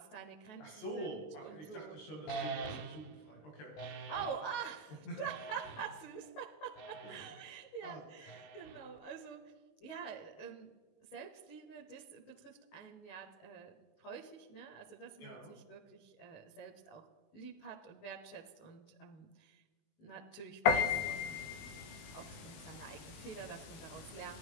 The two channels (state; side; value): late; right; 20 ms